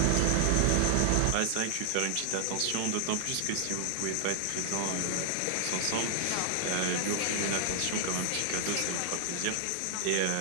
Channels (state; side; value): different; both; correlation -0.01